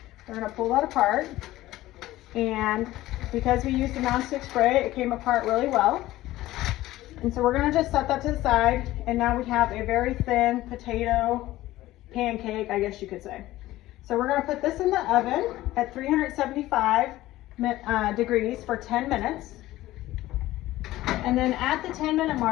we're going to pull that apart, and because we used the nonstick spray, it came apart really well. And so we're going to just set that to the side, and now we have a very thin potato pancake, I guess you could say. So we're going to put this in the oven at 375 degrees for 10 minutes. And then at the 10-minute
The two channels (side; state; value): right; quieter; 16.2 dB